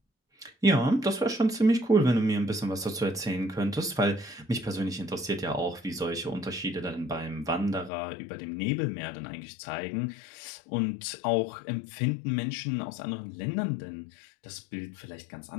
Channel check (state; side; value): drops out; right; at 7.9 s